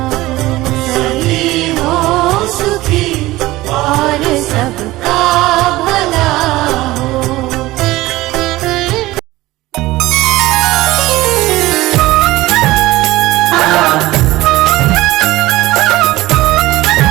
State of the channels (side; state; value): left; quieter; 18.2 dB